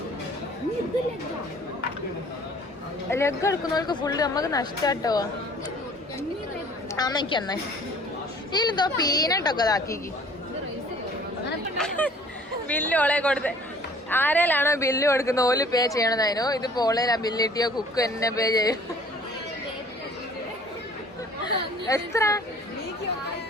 ലെഗ് എടുക്കുന്നവർക്ക് ഫുള്ള് നമുക്ക് നഷ്ടാട്ടോ. അമ്മയ്ക്ക് അന്നേ ഇതിലെന്തോ പീനട്ടൊക്കെ ഇതാക്കി ബില്ല് ഓളെ കൊടുത്ത്. ആരേലാണോ ബില്ല് കൊടുക്കുന്ന ഓല് പേ ചെയ്യണതായിരുന്നു. ഇതിപ്പോ ഓളേലാ ബില്ല് കിട്ടിയോ കുക്ക് എന്നെ പേ ചെയ്യും. എത്ര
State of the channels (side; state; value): both; normal; correlation 0.52